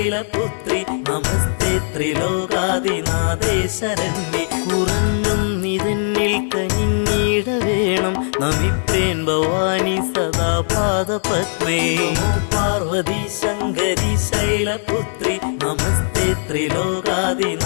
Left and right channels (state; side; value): silent; right; 66 dB below the other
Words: നമസ്തേ ത്രിലോകാദിനാഥേ ശരണ്യേ. കുറഞ്ഞും നിതന്നിൽ കനിഞ്ഞിട വേണം നമിപ്പേൻ ഭവാനി സദാ പാദപത്മേ. നമോ പാർവതി ശങ്കരി ശൈലപുത്രി നമസ്തേ